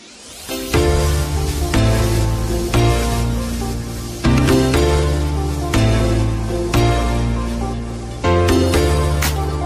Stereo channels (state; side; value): identical; both; correlation 1.00